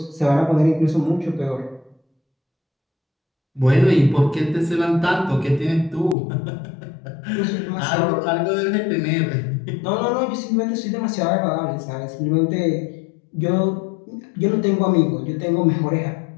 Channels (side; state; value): right; drops out; at 6.2 s